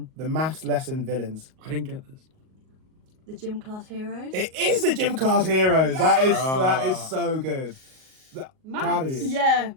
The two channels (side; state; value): left; late; 38 ms